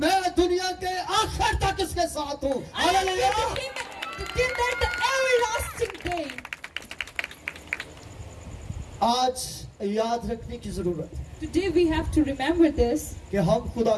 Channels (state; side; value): identical; both; correlation 1.00